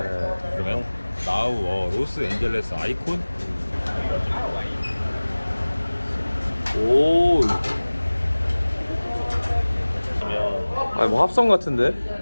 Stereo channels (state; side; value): inverted; both; correlation -1.00